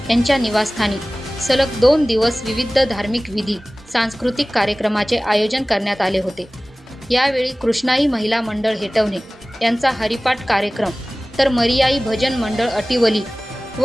यांच्या निवासस्थानी सलग 2 दिवस विविध धार्मिक विधी सांस्कृतिक कार्यक्रमाचे आयोजन करण्यात आले होते. यावेळी कृष्णाई महिला मंडळ हेटवणे यांचा हरिपाठ कार्यक्रम तर मरियाई भजन मंडळ अटिवली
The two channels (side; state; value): both; normal; correlation 0.98